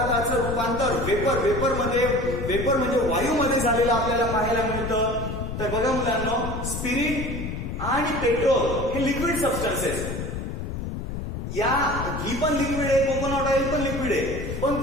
रूपांतर वेपर म्हणजे वायूमध्ये झालेलं आपल्याला पाहायला मिळतं? तर बघा मुलांनो, स्पिरिट आणि पेट्रोल हे लिक्विड सबस्टन्सेस. ही पण लिक्विड आहे, कोकोनट ऑइल पण लिक्विड आहे. पण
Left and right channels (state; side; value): noise; left; rumble, 5 dB below the sound